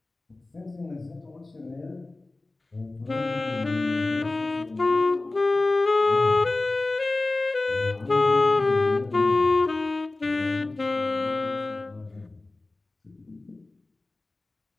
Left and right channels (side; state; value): right; quieter; 3.1 dB